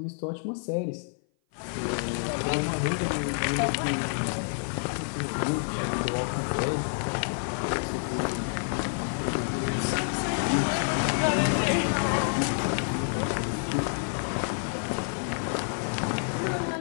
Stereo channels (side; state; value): right; silent; 56 dB below the other